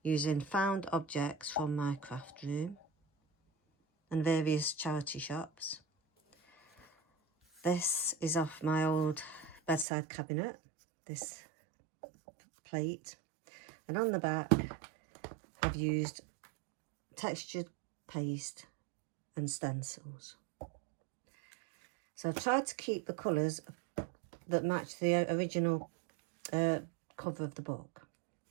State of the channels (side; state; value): left; drops out; at 9.9 s